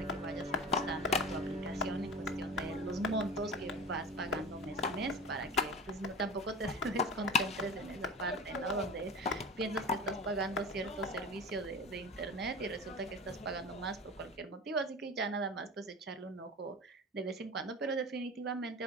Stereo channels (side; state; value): both; normal; correlation 0.33